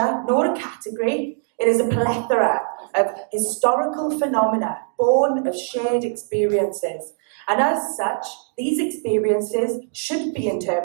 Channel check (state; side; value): silent; left; 64 dB below the other